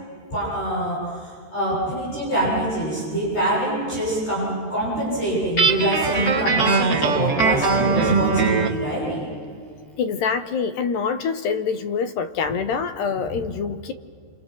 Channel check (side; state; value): right; late; 13 ms